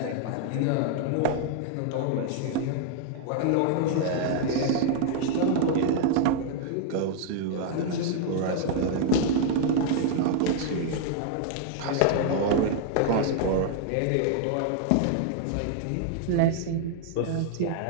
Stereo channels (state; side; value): different; both; correlation 0.00